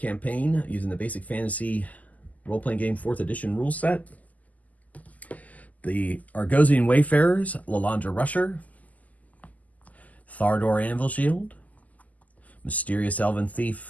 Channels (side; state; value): right; late; 0.077 ms